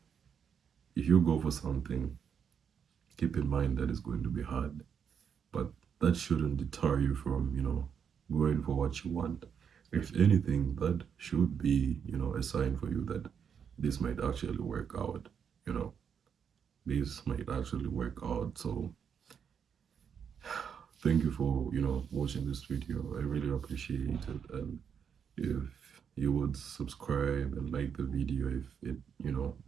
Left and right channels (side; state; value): left; quieter; 7.4 dB